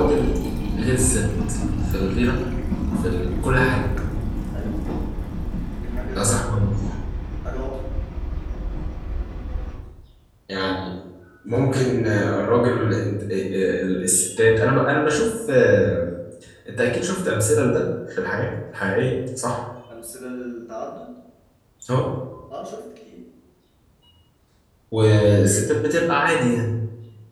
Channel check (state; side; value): identical; both; correlation 1.00